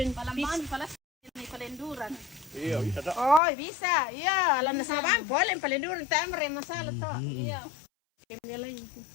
palaman, palas may palenduran. Oh, bisa. Iya, alam na sabang polen palenduran tamre masala to. Iya. Kemilay.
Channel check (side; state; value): right; drops out; at 3.4 s